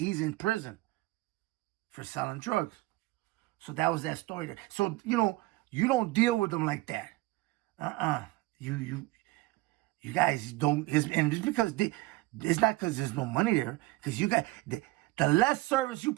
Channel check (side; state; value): left; quieter; 20.2 dB